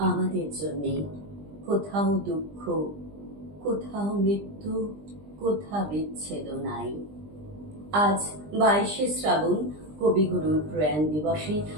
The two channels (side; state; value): left; late; 20 ms